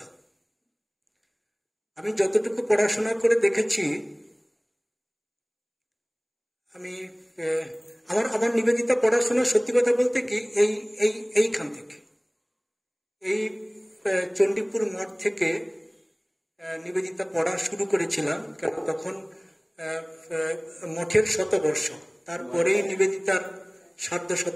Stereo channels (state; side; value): identical; both; correlation 1.00